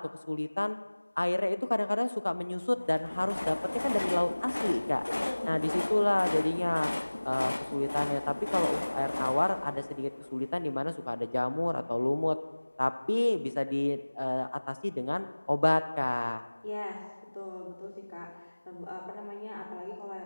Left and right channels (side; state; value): both; inverted; correlation -1.00